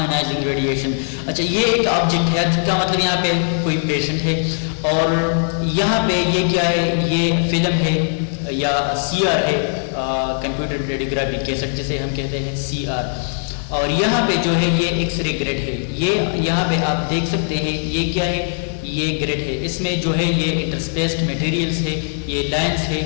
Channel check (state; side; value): silent; right; 66 dB below the other